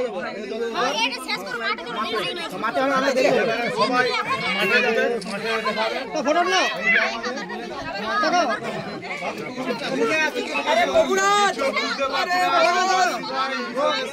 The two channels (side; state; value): both; identical; correlation 1.00